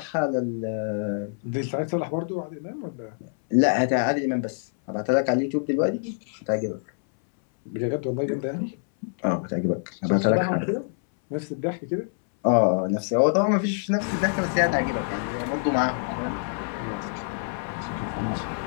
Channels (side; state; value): right; silent; 61 dB below the other